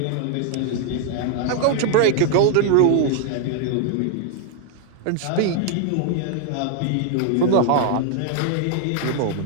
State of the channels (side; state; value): both; different; correlation 0.00